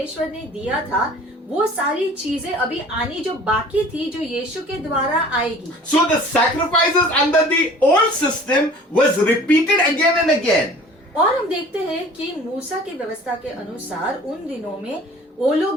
ने दिया था, वो सारी चीजें अभी आनी जो बाकी थी जो यीशु के द्वारा आएगी। So the sacrifices under the old system was repeated again and again. और हम देखते हैं कि मूसा की व्यवस्था के अनुसार उन दिनों में वो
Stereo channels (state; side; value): normal; both; correlation 0.47